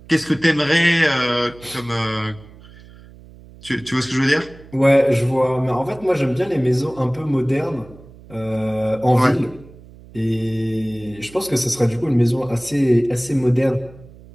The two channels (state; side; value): noise; right; hum, 21 dB below the sound